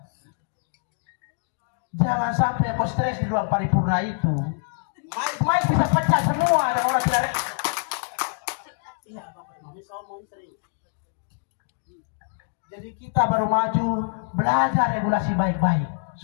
Jangan sampai kau stres di ruang paripurna itu. Mic bisa pecah semua dan orang tidak. Iya, jadi kita baru maju belajar regulasi baik-baik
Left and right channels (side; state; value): right; silent; digital silence